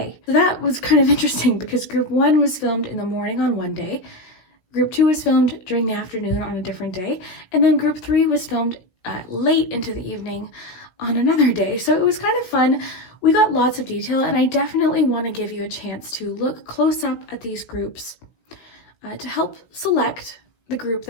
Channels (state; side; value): late; right; 16 ms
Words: So that was kind of interesting because group 1 was filmed in the morning on one day. Group 2 was filmed during the afternoon on a different day, and then Group 3 was filmed late into the evening on another day. So it was kind of fun. We got lots of detail, and I definitely want to give you a chance to look close up at these groups to help select the group